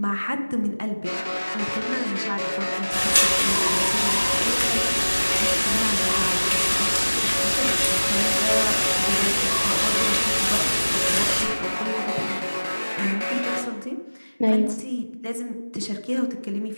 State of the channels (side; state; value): both; inverted; correlation -1.00